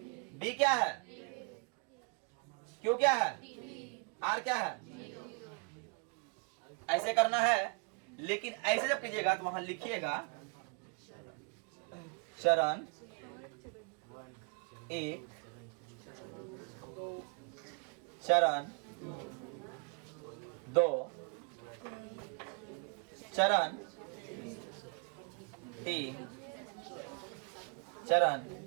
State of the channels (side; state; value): left; quieter; 36.8 dB